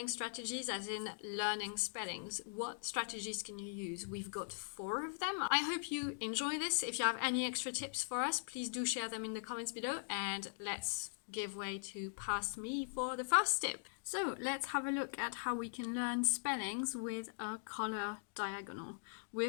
strategies, as in learning spellings. What strategies can you use? We've got 4 of them. I hope you enjoy this. If you have any extra tips for us, please do share them in the comments below, and let's give way to past me for the first tip. So let's have a look at how we can learn spellings with a color diagonal.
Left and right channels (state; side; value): silent; right; digital silence